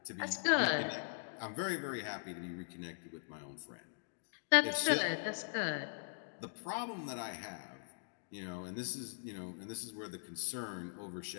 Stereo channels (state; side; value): silent; right; digital silence